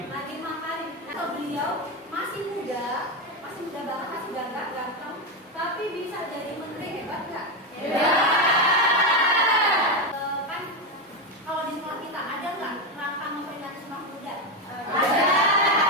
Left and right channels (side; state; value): both; normal; correlation 0.10